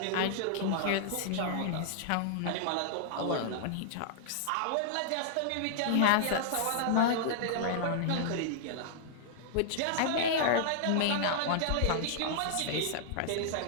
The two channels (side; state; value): both; different; correlation -0.01